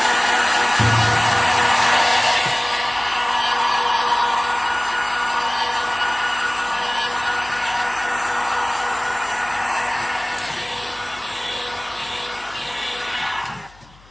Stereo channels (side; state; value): left; noise; hum, 27 dB below the sound